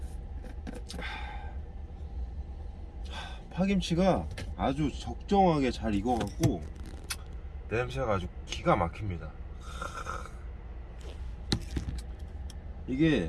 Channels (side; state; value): both; identical; correlation 1.00